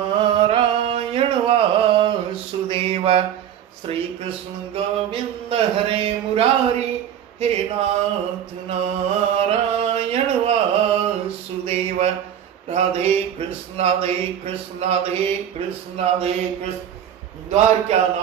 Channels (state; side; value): quieter; left; 9.8 dB